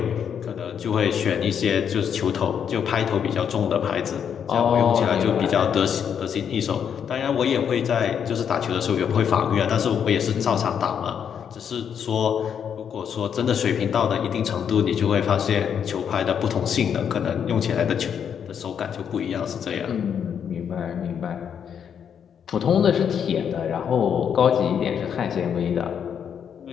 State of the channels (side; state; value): right; quieter; 8.0 dB